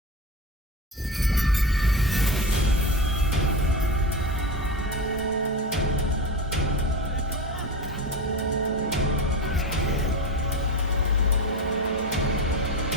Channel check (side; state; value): both; normal; correlation 0.24